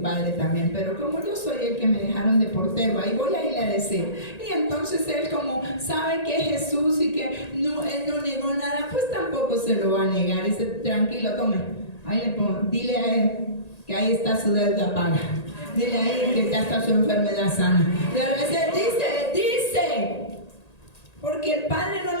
padre también, pero como yo soy el que me dejaron de portero, ahí voy a ir a decir. Y entonces él, como sabe que es Jesús y que no, él no negó nada, pues tampoco se lo va a negar. Dice, tranquilo, tome, ahí le pongo, dile a él que ahí está su deuda paga. Dile a él que ya está su enfermedad sana. Y a veces dice, porque el Padre no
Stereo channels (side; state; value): right; late; 1.8 ms